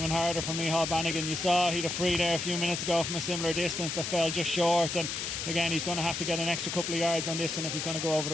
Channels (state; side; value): noise; left; hiss, 3 dB below the sound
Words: harder for Micheál Bannigan. You saw he'd a free there a few minutes ago from a similar distance that fell just short, and again he's going to have to get an extra couple of yards on this one if he's going to go over